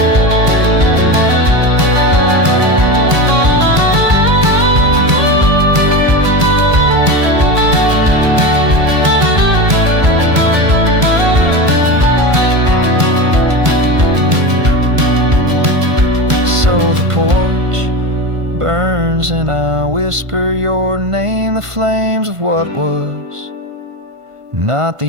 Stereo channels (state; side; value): late; left; 1.5 ms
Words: Porch burns and I whisper your name, the flames of what was, not